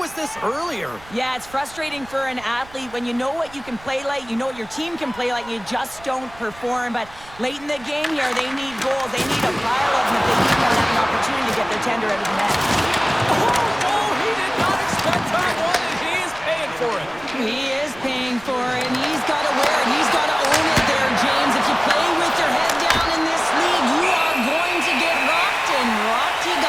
this earlier? Yeah, it's frustrating for an athlete when you know what you can play like, you know what your team can play like, you just don't perform. But late in the game here, they need goals. They need a pile of them if they keep on having an opportunity to get their tender out of the net. Oh, he did not expect that one, and he is paying for it. He is paying for it, and he's got to wear it. He's got to own it there, James. If you play with your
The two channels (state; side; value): noise; right; rumble, 22 dB below the sound